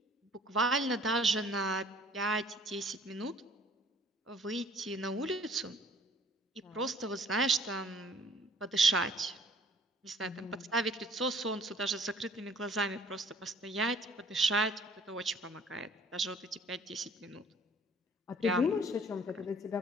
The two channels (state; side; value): normal; both; correlation 0.56